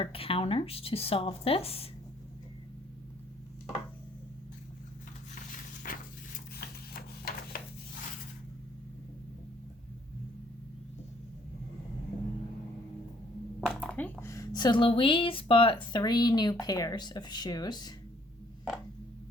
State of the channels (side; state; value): both; normal; correlation 0.64